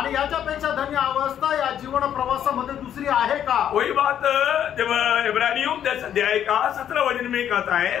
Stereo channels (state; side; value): quieter; right; 9.8 dB